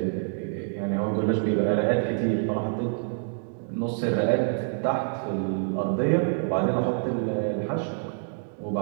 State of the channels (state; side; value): silent; left; digital silence